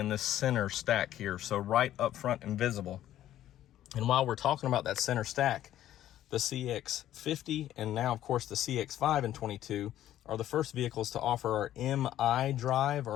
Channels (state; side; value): quieter; right; 12.5 dB